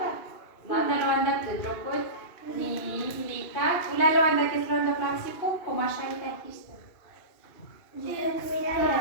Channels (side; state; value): right; late; 2.7 ms